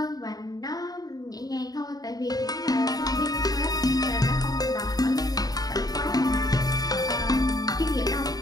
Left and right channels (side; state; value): right; late; 0.18 ms